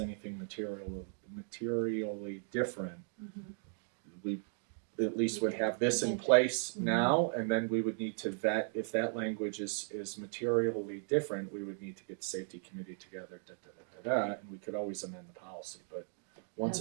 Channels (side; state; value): left; silent; 53 dB below the other